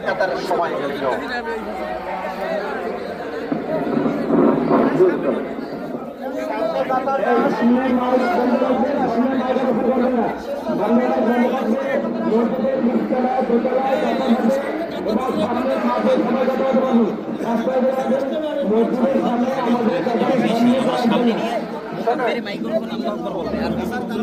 তার সময় মাইক্রোফোন আমরা করবো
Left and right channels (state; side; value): identical; both; correlation 1.00